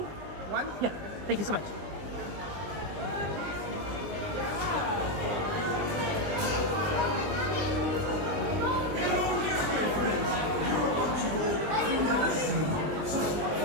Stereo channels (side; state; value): left; late; 20 ms